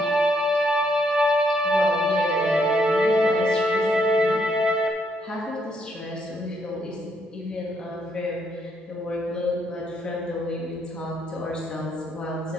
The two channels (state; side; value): normal; both; correlation 0.73